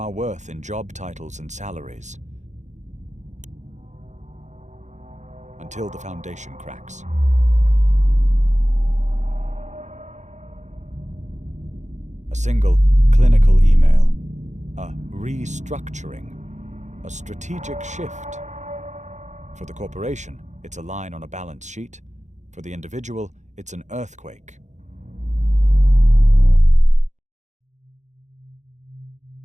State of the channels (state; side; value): late; left; 0.34 ms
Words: worth in job titles and salaries. Until the foundation cracks. A single clinical email, a restructuring, a strategic shift. For the corporation, it's a line on a balance sheet. For the individual, it's an earthquake.